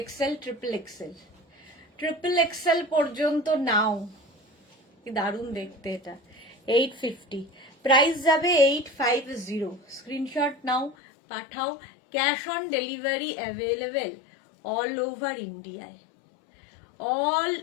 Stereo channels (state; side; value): drops out; right; at 11.0 s